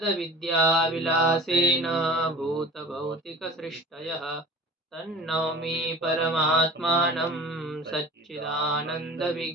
भूतभौतिकसृष्टयः तन्नौमि परमात्मानं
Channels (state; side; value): normal; both; correlation 0.40